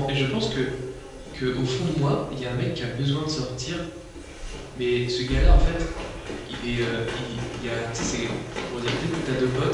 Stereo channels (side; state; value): both; identical; correlation 1.00